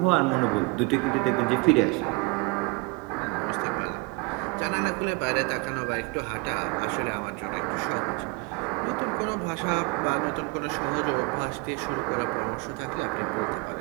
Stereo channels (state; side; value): quieter; left; 28.1 dB